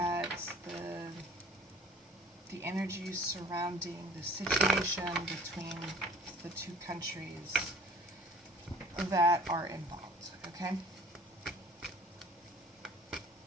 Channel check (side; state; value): both; normal; correlation 0.50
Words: the energy surrounding the situation between the two countries that are involved, okay?